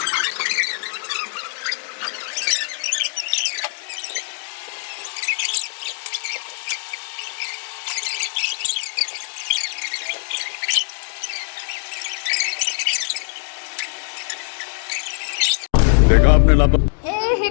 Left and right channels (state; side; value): silent; right; digital silence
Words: देखा आपने लापा हे